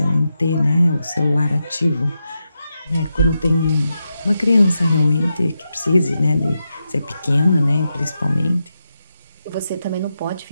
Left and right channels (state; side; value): inverted; both; correlation -0.87